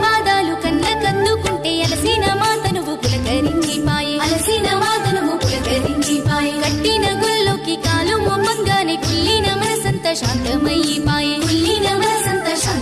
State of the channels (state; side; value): identical; both; correlation 1.00